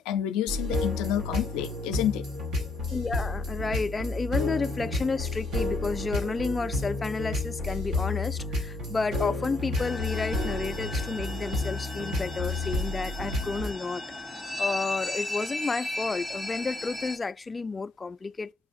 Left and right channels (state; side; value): quieter; right; 3.3 dB